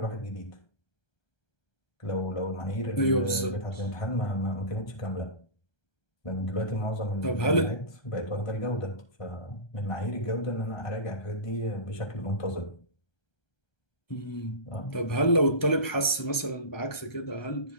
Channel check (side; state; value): right; late; 1.3 ms